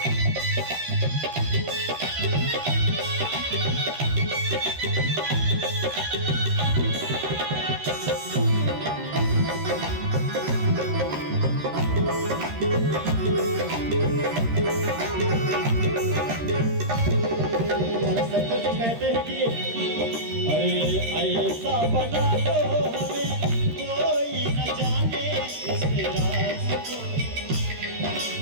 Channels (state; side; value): late; left; 13 ms